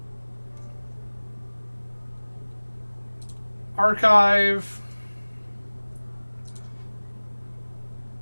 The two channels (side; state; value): both; inverted; correlation -1.00